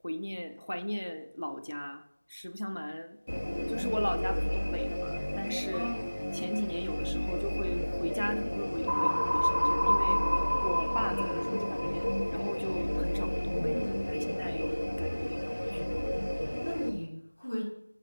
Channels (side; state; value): both; inverted; correlation -1.00